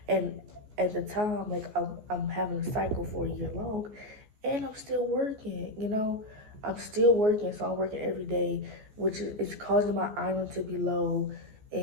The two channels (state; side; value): late; left; 14 ms